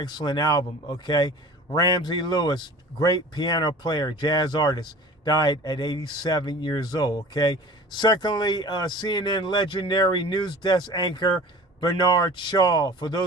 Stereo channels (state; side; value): normal; both; correlation 0.41